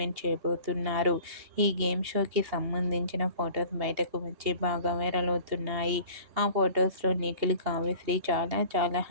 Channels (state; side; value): late; left; 2.8 ms